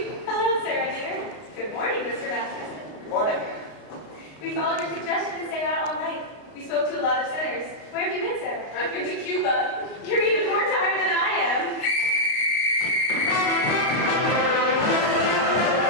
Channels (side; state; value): right; late; 33 ms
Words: Hello, Sarah dear. Good morning, Mr. Masterson. Good morning. We followed your suggestion to stay out all night. We spoke to a lot of sinners. Where have you been, Sarah? I've been to Cuba. You're even more tired than I am.